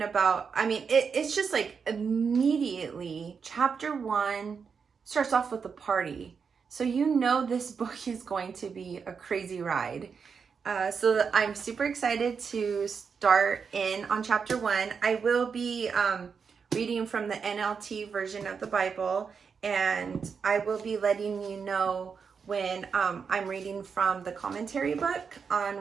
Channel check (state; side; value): quieter; left; 6.0 dB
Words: about, it's just like immediately chapter 1 starts off with a party. So you know this book is going to be a crazy ride. So I'm super excited to start in on chapter 1. I will be reading from the NLT version of the Bible, and I will be letting you know when I'm reading from the commentary book on